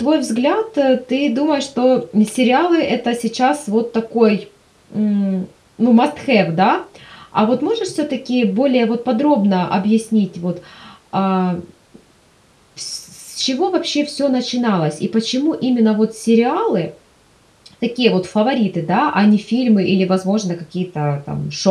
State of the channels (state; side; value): identical; both; correlation 1.00